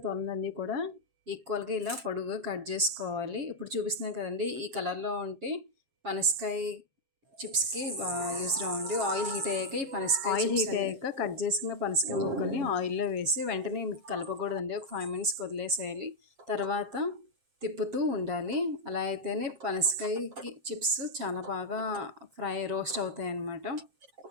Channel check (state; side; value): late; left; 7.5 ms